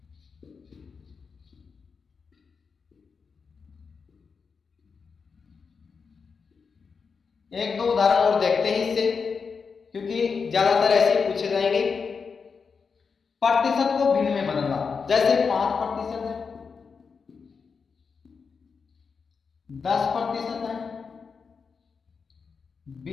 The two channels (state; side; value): quieter; right; 5.4 dB